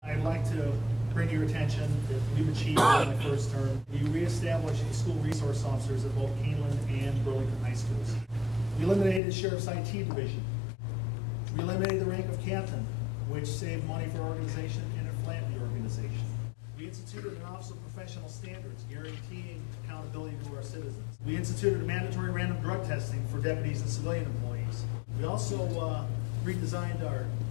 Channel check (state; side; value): drops out; right; at 9.2 s